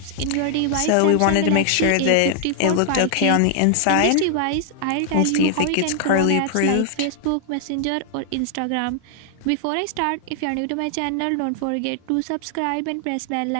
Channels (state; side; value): different; both; correlation 0.00